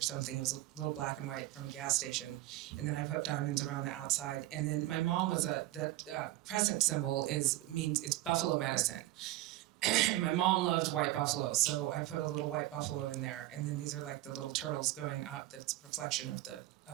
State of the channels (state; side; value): quieter; left; 16.5 dB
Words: something. It was a little black and white from a gas station, and then I put diamonds around the outside. And then my mom was that crescent symbol means it's buffalo medicine. And my mom loved white buffalo, so I put a little white buffalo in there. And then these are like the little turtles going up. That's a reflection of the